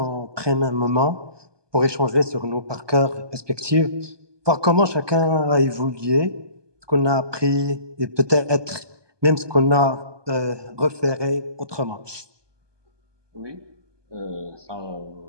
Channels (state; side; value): late; left; 1.2 ms